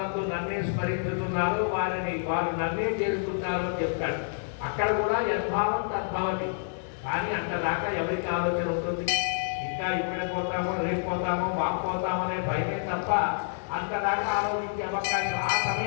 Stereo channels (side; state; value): right; silent; digital silence